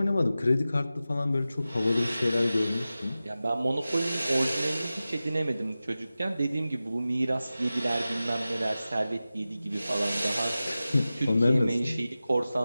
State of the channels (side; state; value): both; inverted; correlation -0.95